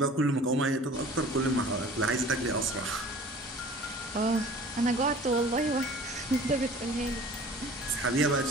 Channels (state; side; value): normal; both; correlation 0.46